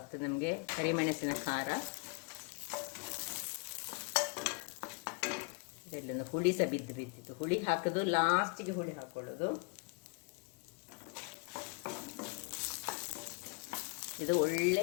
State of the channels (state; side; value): quieter; right; 32.7 dB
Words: ನಮಗೆ, ಕರಿಮೆಣಸಿನ ಖಾರ. ಇದೆಲ್ಲೊಂದು ಹುಳಿ ಸಹ ಬಿದ್ದಿತ್ತು, ಹುಳಿ ಹಾಕೋದು ಲಾಸ್ಟಿಗೆ, ಹುಳಿ ಹಾಕೊಳ್ಳೋದು. ಇದು